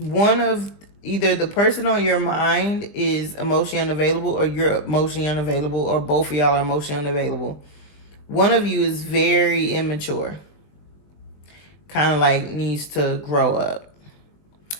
of either the person on your mind is emotionally unavailable, or you're emotionally unavailable, or both of y'all are emotionally unavailable. One of you is very immature, kind of like needs to grow up.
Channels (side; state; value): right; late; 21 ms